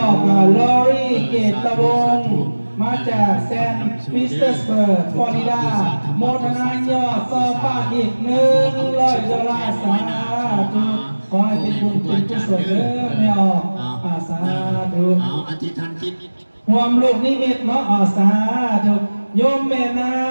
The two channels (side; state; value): both; inverted; correlation -1.00